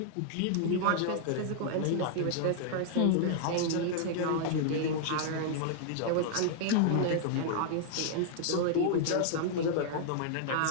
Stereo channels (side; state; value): both; different; correlation -0.01